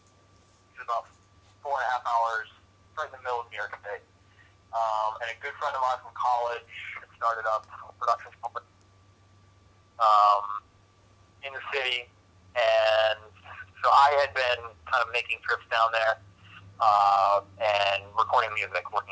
which is about 4.5 hours right in the middle of New York State. And a good friend of mine from college had started up a production company in the city, and so I had been kind of making trips down there and recording music, working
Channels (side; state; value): both; identical; correlation 1.00